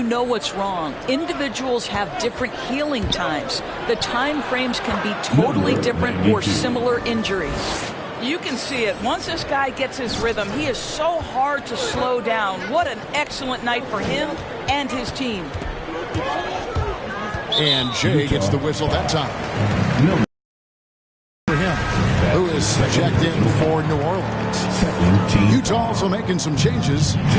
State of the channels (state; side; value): identical; both; correlation 1.00